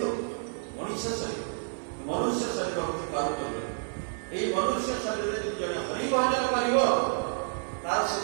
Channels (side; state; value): left; silent; 58 dB below the other